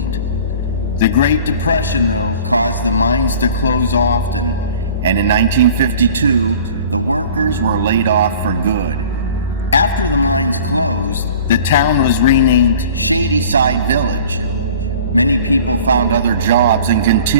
The Great Depression, though, caused the mines to close often, and in 1952, the workers were laid off for good. After the mines closed, the town was renamed Shadyside Village. Many people found other jobs and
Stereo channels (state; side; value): inverted; both; correlation -0.45